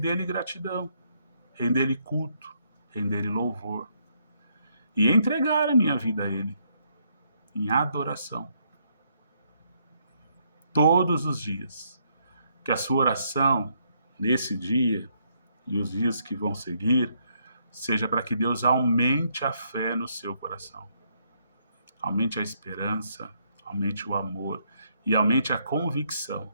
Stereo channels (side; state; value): both; inverted; correlation -0.74